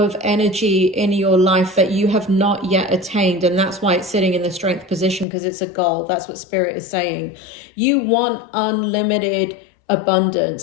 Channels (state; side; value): drops out; right; at 5.2 s